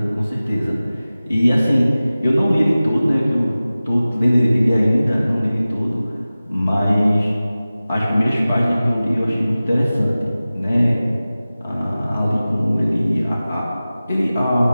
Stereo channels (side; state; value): both; inverted; correlation -0.97